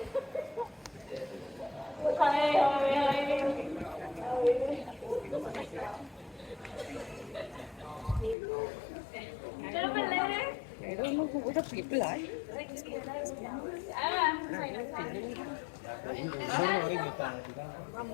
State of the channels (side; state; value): right; drops out; at 8.3 s